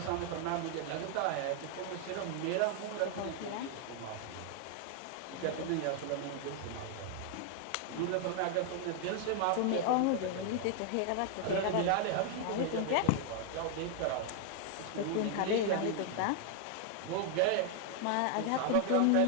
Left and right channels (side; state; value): both; different; correlation 0.00